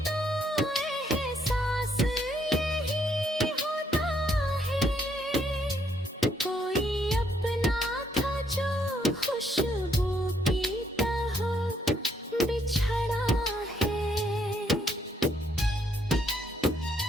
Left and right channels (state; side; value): normal; both; correlation 0.71